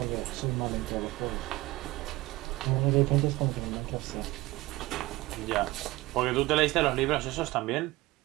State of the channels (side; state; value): left; quieter; 19.7 dB